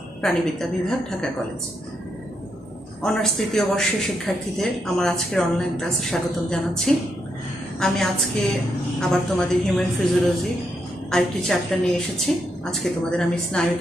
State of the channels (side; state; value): both; normal; correlation 0.80